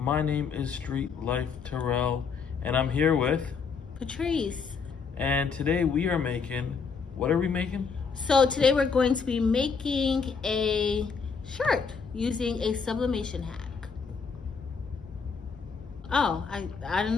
name is Street Life Terrell, and I'm here with Patrice. And today we are making, what are we making? So today we're going to be making a shirt using a sublimation hack. Oh, I don't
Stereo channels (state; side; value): quieter; right; 5.5 dB